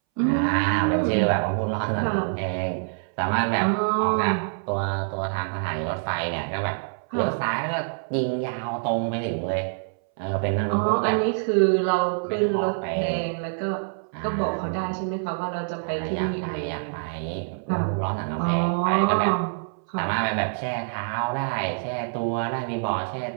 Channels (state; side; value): silent; left; 61 dB below the other